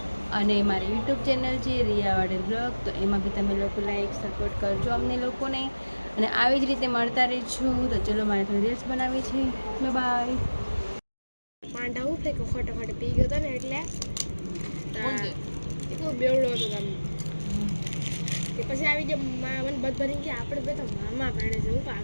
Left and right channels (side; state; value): both; inverted; correlation -1.00